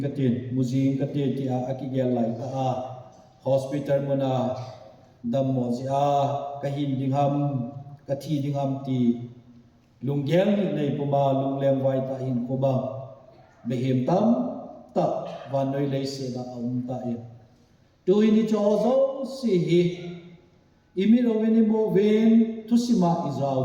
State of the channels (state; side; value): identical; both; correlation 1.00